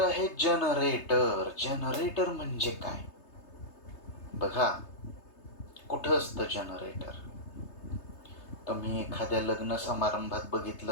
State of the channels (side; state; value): right; late; 3.3 ms